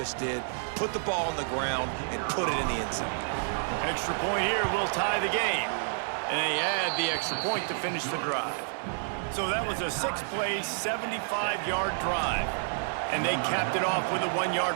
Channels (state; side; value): silent; left; 58 dB below the other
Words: did. Put the ball on the ground and put it in the end zone. Extra point here will tie the game. And they add the extra point to finish the drive. So that was a 6-play, 75-yard drive. And they capped it off with a